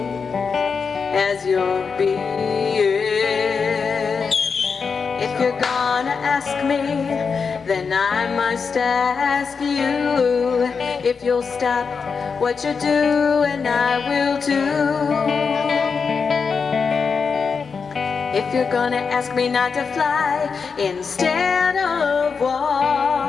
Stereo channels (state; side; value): quieter; right; 5.5 dB